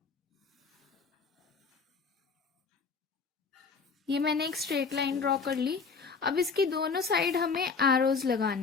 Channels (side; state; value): right; quieter; 5.1 dB